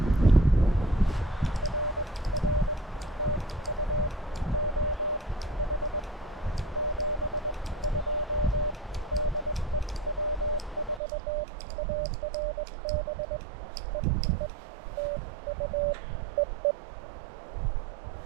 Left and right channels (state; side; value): drops out; left; at 11.0 s